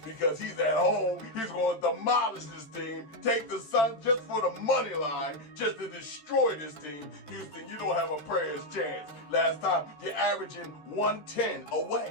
because he's at home. He's going to demolish this team. Take the Suns just for the money line, just to destroy this team. Houston, you don't have a prayer's chance. Last time, you're averaging 110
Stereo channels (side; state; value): right; late; 13 ms